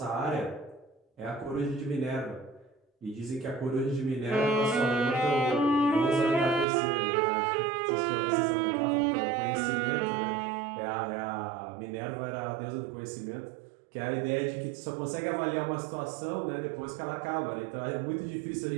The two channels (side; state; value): left; drops out; at 6.7 s